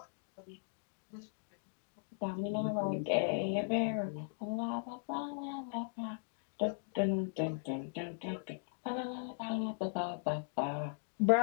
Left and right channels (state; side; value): silent; right; digital silence